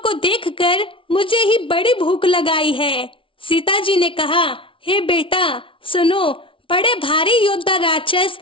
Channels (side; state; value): right; late; 0.25 ms